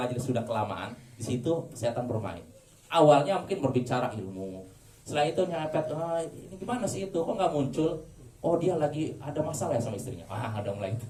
sudah kelamaan, di situ setan bermain. Awalnya mungkin berbicara ilmu, setelah itu nyepet, ini gimana sih itu, kok nggak muncul? Oh, dia lagi ada masalah ya sama istrinya. Ada mulai itu.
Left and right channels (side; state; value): both; identical; correlation 1.00